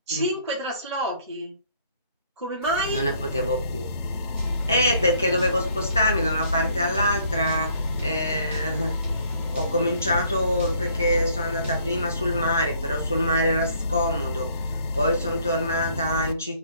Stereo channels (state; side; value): inverted; both; correlation -0.64